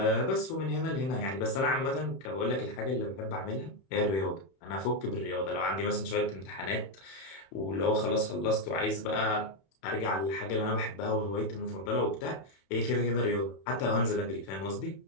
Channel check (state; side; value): late; right; 31 ms